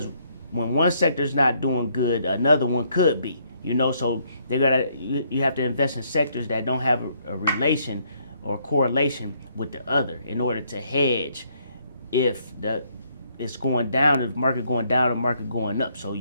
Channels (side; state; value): both; inverted; correlation -0.70